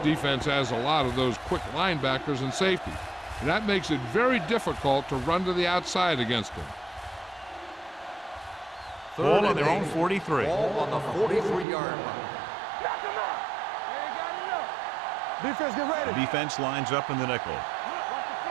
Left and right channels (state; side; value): drops out; left; at 11.7 s